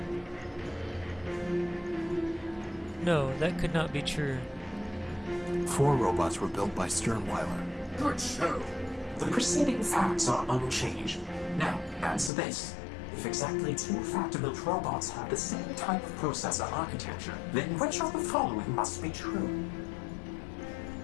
No, that could not be true. 4 robots were built by Sternweiler. Good show. The preceding facts are unchanged. Now, answer this. If exactly 2 factor-built robots have the same type of processor architecture, then which of the following must be true?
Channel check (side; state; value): right; drops out; at 12.3 s